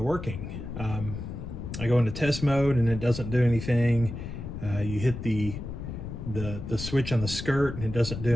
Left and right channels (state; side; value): noise; left; rumble, 8 dB below the sound